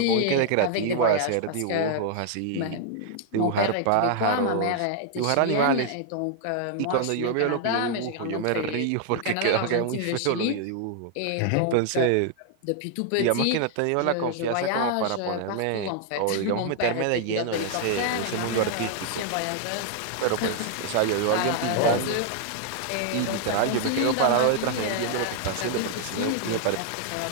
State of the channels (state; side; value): different; both; correlation 0.00